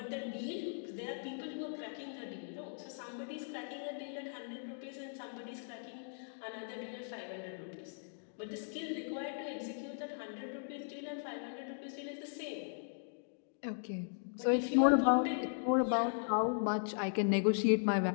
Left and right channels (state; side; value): silent; right; digital silence